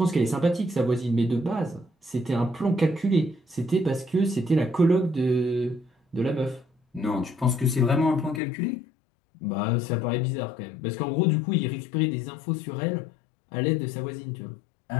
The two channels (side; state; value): right; drops out; at 8.4 s